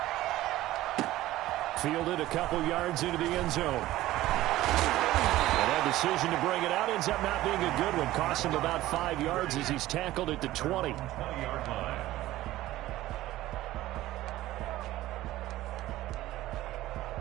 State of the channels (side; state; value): left; quieter; 15.8 dB